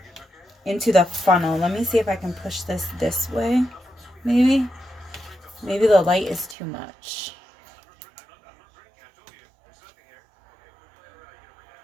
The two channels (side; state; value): left; drops out; at 6.6 s